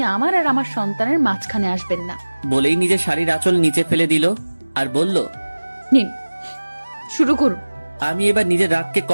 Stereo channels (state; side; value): inverted; both; correlation -1.00